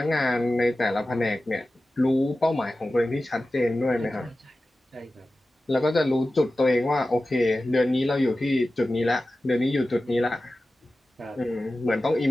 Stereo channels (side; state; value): both; normal; correlation 0.95